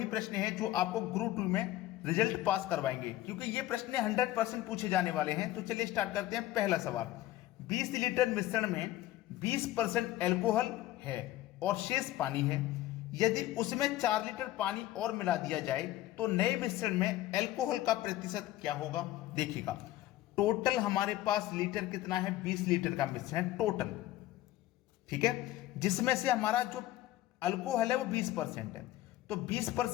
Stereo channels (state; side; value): quieter; right; 15.3 dB